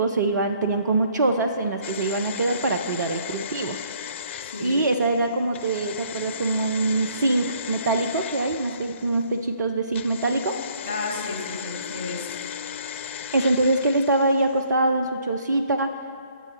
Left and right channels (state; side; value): inverted; both; correlation -0.63